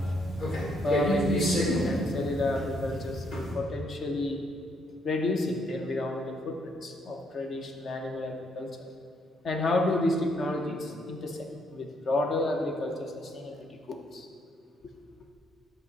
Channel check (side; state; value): both; normal; correlation 0.72